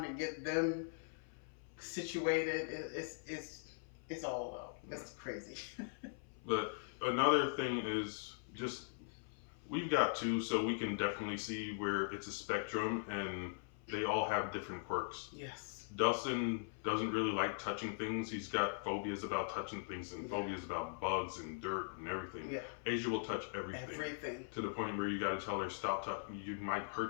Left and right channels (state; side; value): silent; right; 50 dB below the other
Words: to get them situated. It's all out. It's crazy. But another thing is just we've got two, so we can definitely see where it's a spectrum and they all have different quirks. Yes. Dustin doesn't really like touching things. He's got phobias about touching things and Yeah. phobias about bugs and dirt and everything. Yeah. Asia will touch everything. Everything. To the point where you got to tell her, stop touching. You might